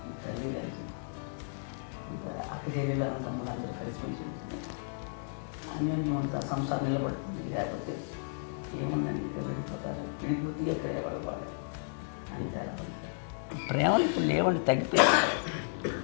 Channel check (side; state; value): right; silent; digital silence